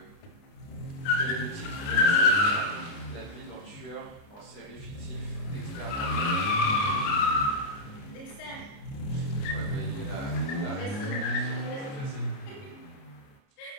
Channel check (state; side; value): late; right; 29 ms